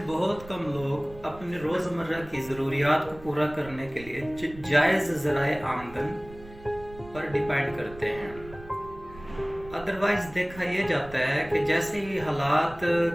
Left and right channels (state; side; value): noise; right; rumble, 18 dB below the sound